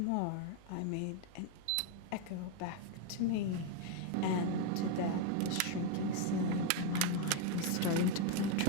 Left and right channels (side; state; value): both; different; correlation 0.01